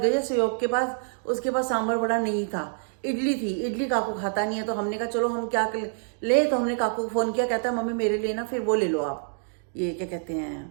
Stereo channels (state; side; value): silent; left; digital silence